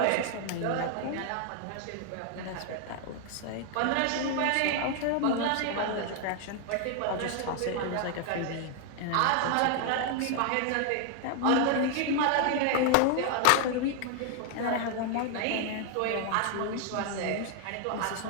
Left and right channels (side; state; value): both; different; correlation 0.00